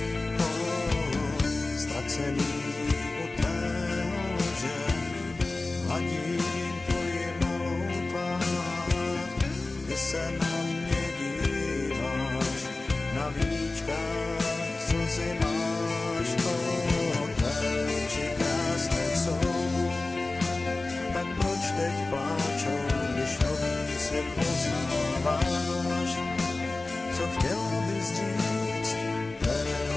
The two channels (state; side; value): quieter; right; 3.2 dB